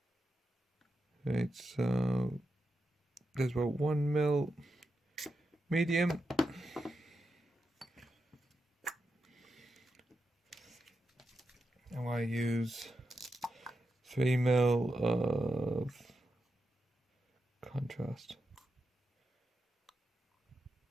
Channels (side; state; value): both; normal; correlation 0.87